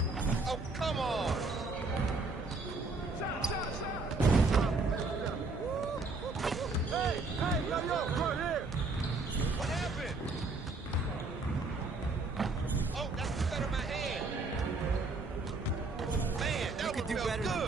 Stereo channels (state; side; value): quieter; left; 3.5 dB